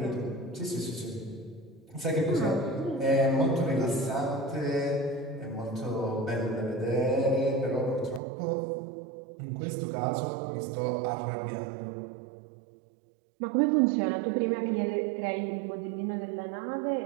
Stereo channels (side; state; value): left; drops out; at 8.2 s